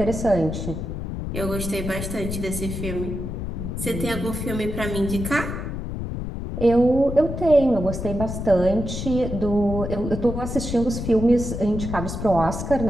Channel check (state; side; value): noise; left; rumble, 5 dB below the sound